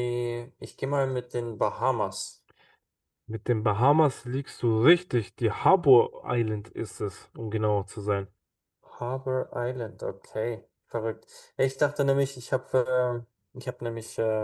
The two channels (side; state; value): both; identical; correlation 1.00